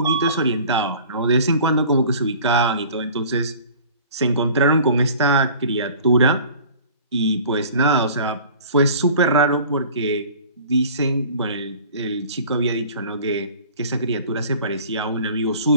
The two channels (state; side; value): inverted; both; correlation -0.46